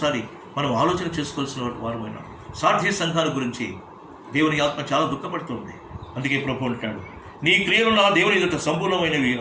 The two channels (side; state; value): both; identical; correlation 1.00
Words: మనం ఆలోచన చేసుకోవాల్సిన వారమైనా. సార్థి సంఘాల గురించి దేవుని ఆత్మ చాలా దుఃఖపడుతుంది. అందుకే ప్రభు అంటాడు, నీ క్రియలు నా దేవుని ఎదుట సంపూర్ణమైనవి